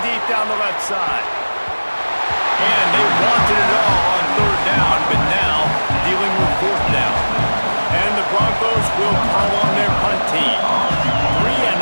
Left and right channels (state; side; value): inverted; both; correlation -1.00